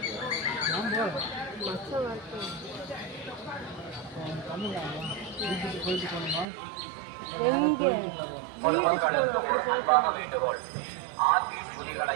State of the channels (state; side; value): drops out; left; at 6.5 s